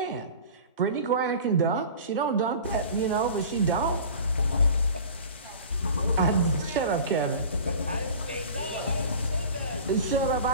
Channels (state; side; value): inverted; both; correlation -0.39